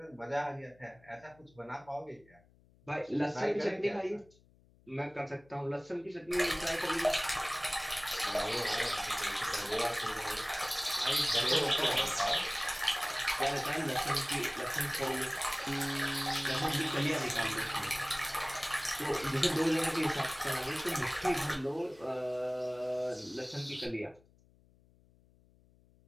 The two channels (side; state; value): left; noise; hum, 29 dB below the sound